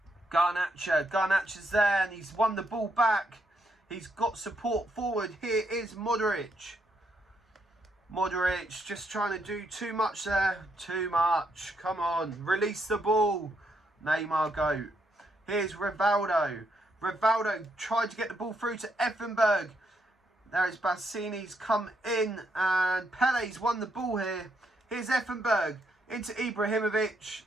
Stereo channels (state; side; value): normal; both; correlation 0.76